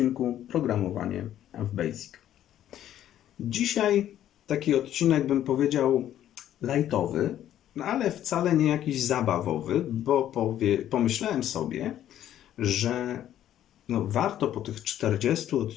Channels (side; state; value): right; quieter; 11.6 dB